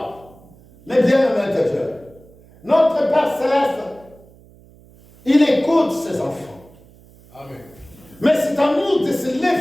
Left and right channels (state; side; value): noise; right; hum, 26 dB below the sound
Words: Mais bien aimé de Dieu, notre Père Céleste, il écoute ses enfants. Amen. Mais c'est à nous de se